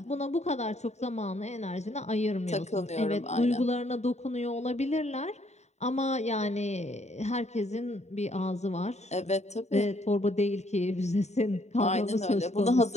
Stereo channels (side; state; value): right; late; 0.32 ms